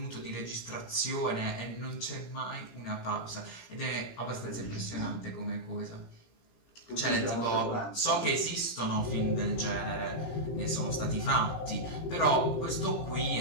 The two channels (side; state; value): right; late; 18 ms